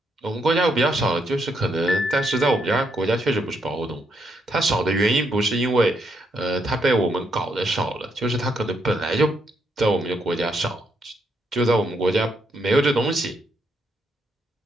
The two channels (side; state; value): both; normal; correlation 0.76